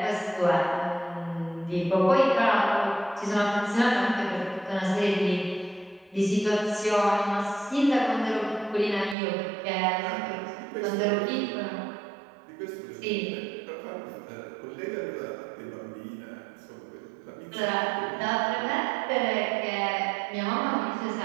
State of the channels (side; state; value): left; drops out; at 9.2 s